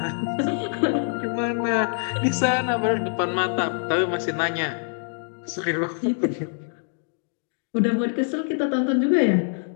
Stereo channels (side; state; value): right; silent; digital silence